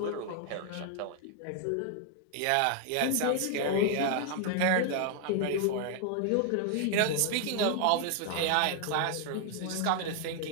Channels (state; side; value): different; both; correlation 0.00